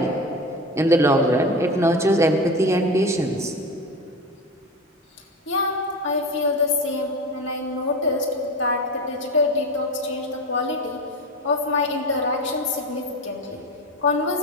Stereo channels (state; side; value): normal; both; correlation 0.25